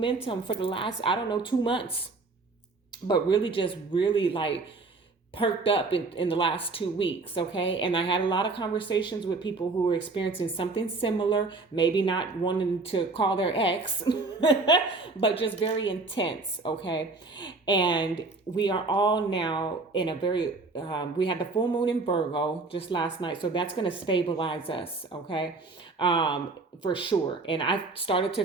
for the last, 2 months. But really just really like perked up in the last 2 weeks, okay? And I had a lot of conversations with people who were experiencing something similar, maybe not wanting to call their ex, but just very intense, okay? And we are all now in a very, we had the full moon in Virgo just last night, so that's going to stabilize us, okay? For sure. And I started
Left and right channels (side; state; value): left; quieter; 3.7 dB